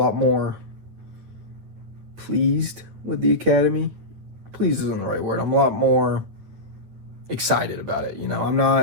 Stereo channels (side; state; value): left; late; 9.9 ms